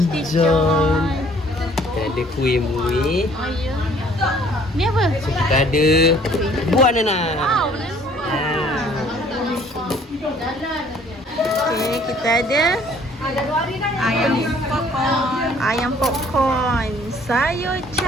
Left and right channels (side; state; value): both; normal; correlation 0.57